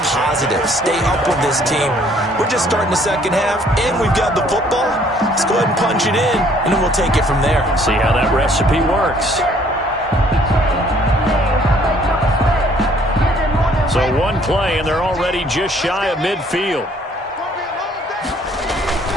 positive, stay up with this team. We're just starting the second half, and we've got the football. Let's go ahead and punch it in, and then we'll take it from there. See how that recipe works. So one play, and they're already just shy of midfield.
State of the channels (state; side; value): normal; both; correlation 0.61